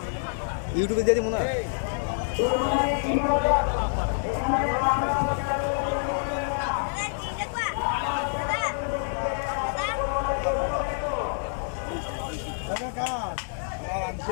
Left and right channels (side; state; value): right; silent; 60 dB below the other